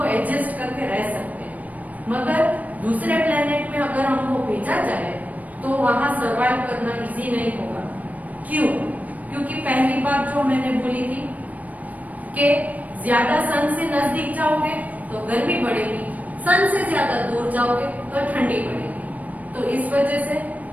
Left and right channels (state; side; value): late; left; 0.073 ms